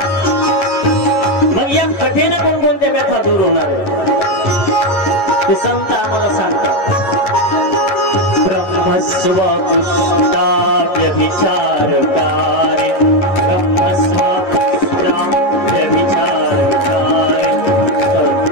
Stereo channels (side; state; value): right; late; 11 ms